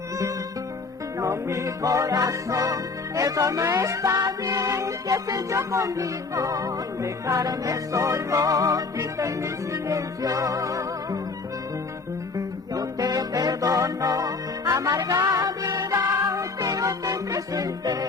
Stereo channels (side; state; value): right; quieter; 4.2 dB